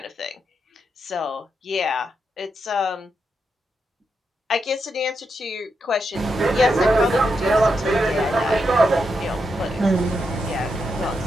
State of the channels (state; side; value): normal; both; correlation 0.83